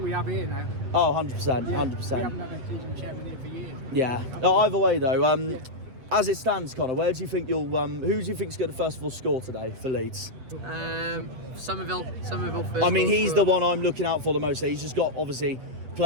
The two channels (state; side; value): late; left; 8.1 ms